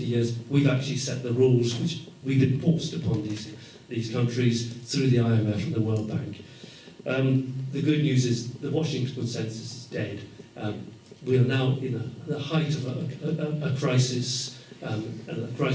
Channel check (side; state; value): both; identical; correlation 1.00